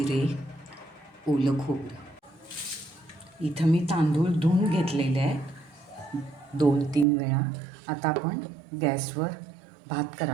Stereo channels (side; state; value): left; drops out; at 7.1 s